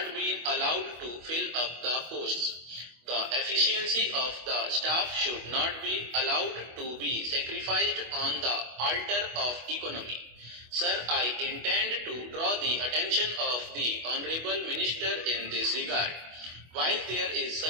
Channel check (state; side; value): late; left; 25 ms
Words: been allowed to fill up the posts. The efficiency of the staff should not be allowed to be sacrificed on the altar of economy. Sir, I intend to draw the attention of the Honorable Minister in this regard. While there is